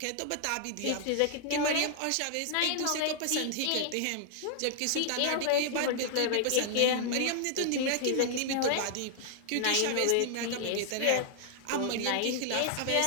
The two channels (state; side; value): different; both; correlation 0.00